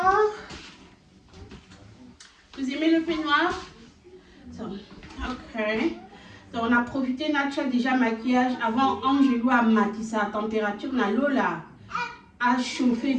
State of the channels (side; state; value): both; identical; correlation 1.00